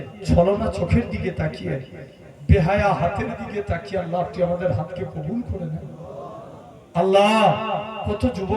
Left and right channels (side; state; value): both; identical; correlation 1.00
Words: ছলনা চোখের দিকে তাকিয়ে বেহায়া হাতের দিকে তাকিয়ে আল্লাহ আপনি আমাদের হাতকে কবুল করে নেন। আল্লাহ কত